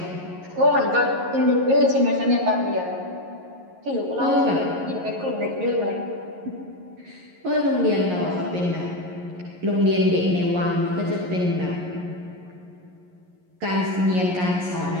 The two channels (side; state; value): left; late; 11 ms